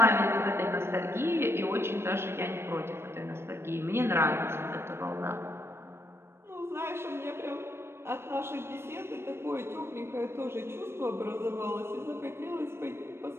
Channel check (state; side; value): late; left; 0.12 ms